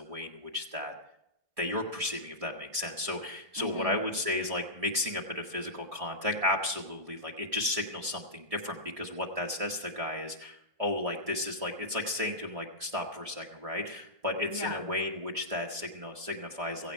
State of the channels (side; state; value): left; late; 1.7 ms